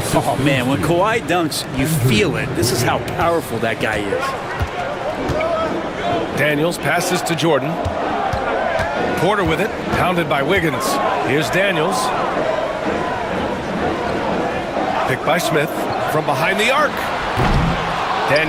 Oh, man, when Kawhi dunks, you feel it. This is how powerful that guy is. Daniels passes to Jordan. Porter with it. Pounded by Wiggins. Here's Daniels. Picked by Smith. From behind the arc.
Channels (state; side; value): identical; both; correlation 1.00